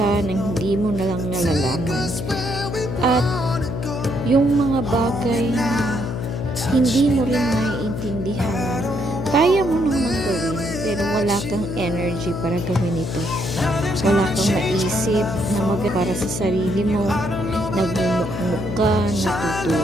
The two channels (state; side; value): noise; left; hum, 5 dB below the sound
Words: nang hindi mo na lang nalalaman. At yung mga bagay na hindi mo rin maiintindihan, kaya mo namang gawin, pero wala kang energy para gawin ito. Wala kang maisip na para sa sarili mo. Nagmumukmuk ka,